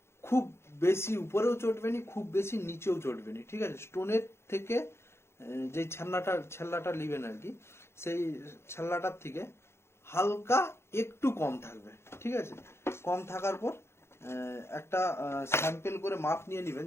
খুব বেশি উপরেও চটবেনি, খুব বেশি নিচেও চটবেনি, ঠিক আছে? স্টোনের থেকে যে ছ্যাল্লাটা নেবেন আর কি, সেই ছ্যাল্লাটার থেকে হালকা একটু কম থাকবে, ঠিক আছে? কম থাকার পর একটা স্যাম্পেল করে মাপ নিয়ে নেবেন,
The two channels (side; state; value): right; late; 0.12 ms